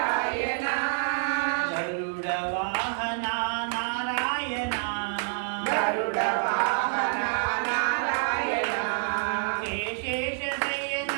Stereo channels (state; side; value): silent; left; 60 dB below the other